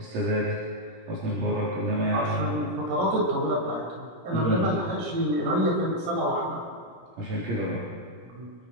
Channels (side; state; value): left; late; 17 ms